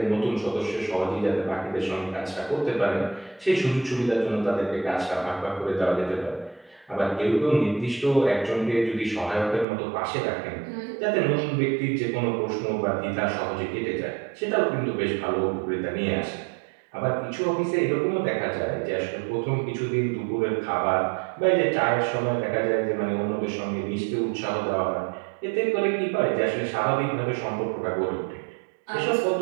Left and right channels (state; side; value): drops out; left; at 9.7 s